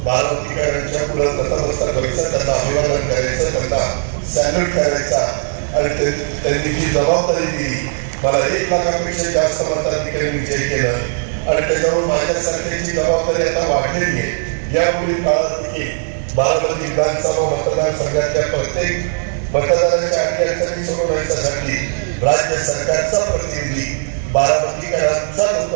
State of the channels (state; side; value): silent; left; digital silence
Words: बारामतीकरांच्या पुढे नतमस्तक व्हायचं, त्यांना अभिवादन करायचं, त्यांना सॅल्यूट करायचा आणि त्यांनी जी जबाबदारी दिली, मला 1 लाखापेक्षा जास्त मताधिकारी विजय केलं आणि त्याच्यावर माझ्यासारख्याची जबाबदारी आता वाढलेली आहे. यापुढील काळात देखील बारामती विधानसभा मतदारसंघातल्या प्रत्येक मतदाराच्या अडचणी सोडवण्यासाठी राज्य सरकारचा प्रतिनिधी, बारामतीकरांचा